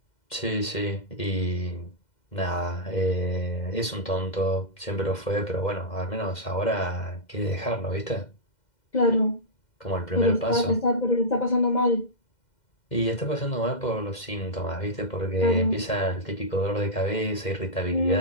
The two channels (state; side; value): late; right; 2.1 ms